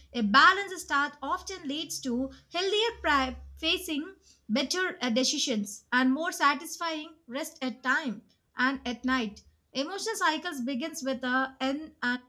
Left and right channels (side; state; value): both; identical; correlation 1.00